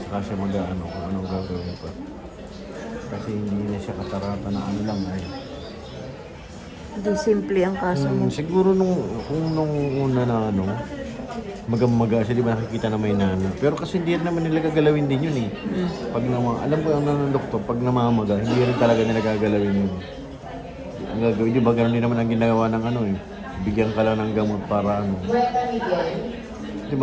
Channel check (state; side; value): identical; both; correlation 1.00